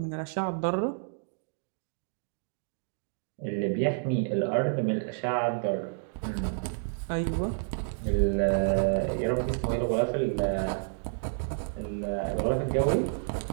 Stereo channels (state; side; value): silent; left; digital silence